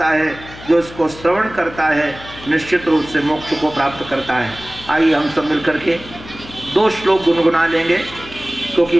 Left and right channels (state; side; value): noise; left; hum, 17 dB below the sound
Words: है, जो इसको श्रवण करता है, निश्चित रूप से मोक्ष को प्राप्त करता है। आइए हम सब मिलकर के 2 श्लोक गुनगुना लेंगे,